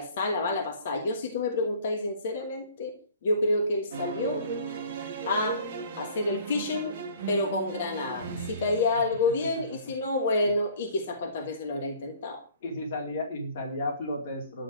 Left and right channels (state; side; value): inverted; both; correlation -0.51